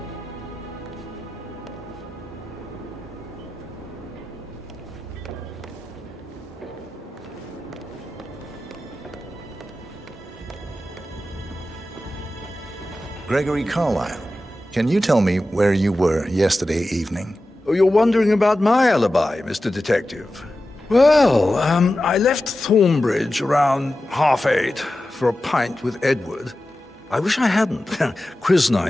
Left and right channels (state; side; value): normal; both; correlation 0.93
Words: Gregory Carlyle, can you tell me where you were yesterday evening? Oh, you're wondering about my alibi, Mr. Detective. Well, I left Thornbridge around 8:30 for a pint with Edward. I wish I hadn't. Quiz